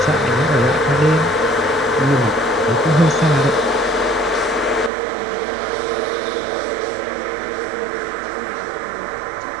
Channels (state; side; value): drops out; left; at 4.9 s